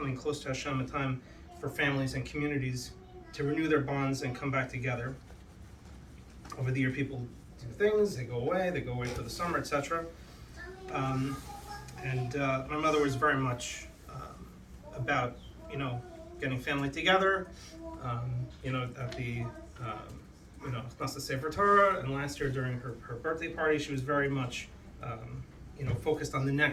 close to Hashem, a time for families and communities to renew their bonds and come back together. Over the year, people do things, they go away for the summer, etc. And my mother was very much about, getting family together, at the, Chnasas Sefer Torah, and last year during her birthday party, she was very much, focused on the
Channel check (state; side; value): identical; both; correlation 1.00